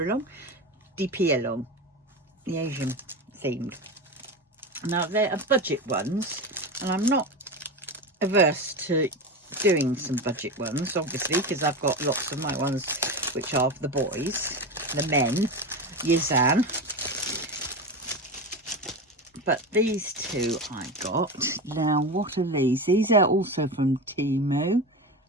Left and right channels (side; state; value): both; normal; correlation 0.22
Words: along, the Asian themed. Now they're budget ones, and I'm not averse to doing some budget ones, obviously, because I've got lots of my ones which are the boys, the men, Yizan. But these 2 I got. Now, what are these? These are also from Temu.